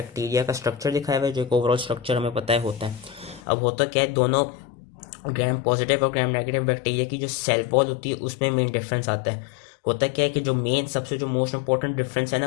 का स्ट्रक्चर दिखाया हुआ है, जो एक ओवरऑल स्ट्रक्चर हमें पता है होता है। अब होता क्या है, दोनों ग्राम पॉजिटिव और ग्राम नेगेटिव बैक्टीरिया की जो सेल वॉल होती है उसमें मेन डिफरेंस आता है। होता क्या है कि जो मेन सबसे जो मोस्ट इंपॉर्टेंट डिफरेंस है ना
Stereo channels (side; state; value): right; drops out; at 3.4 s